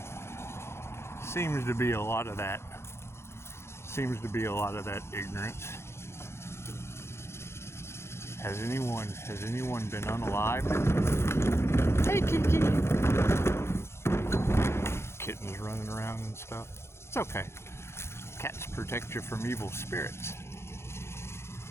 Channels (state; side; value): late; right; 0.12 ms